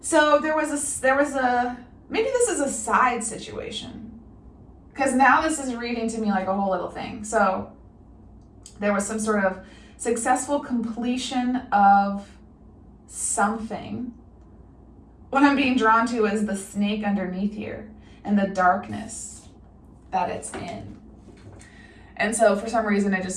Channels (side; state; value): both; identical; correlation 1.00